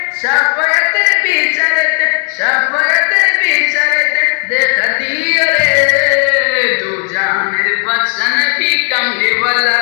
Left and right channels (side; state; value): right; quieter; 37.5 dB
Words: শাফায়াতের বিচারেতে, শাফায়াতের বিচারেতে দেখা দিও রে, দু জাহানের বাদশা নবী কামলি ওয়ালা